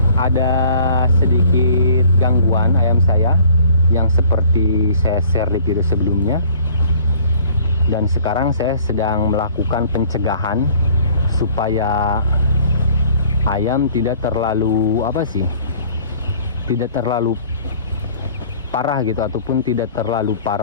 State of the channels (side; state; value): both; inverted; correlation -0.53